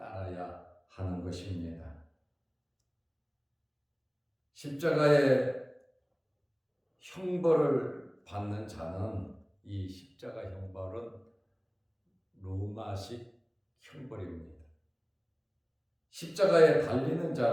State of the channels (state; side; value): identical; both; correlation 1.00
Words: 하는 것입니다. 십자가의 형벌을 받는 자는, 이 십자가 형벌은 로마식 형벌입니다. 십자가에 달리는